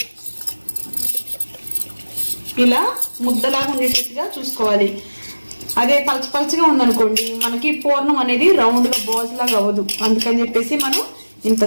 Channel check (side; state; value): both; inverted; correlation -1.00